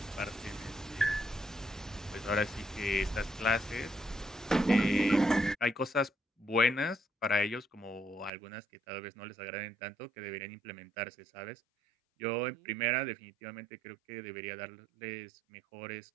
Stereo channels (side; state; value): left; drops out; at 8.3 s